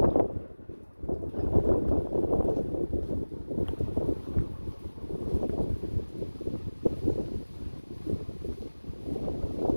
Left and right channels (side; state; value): both; inverted; correlation -1.00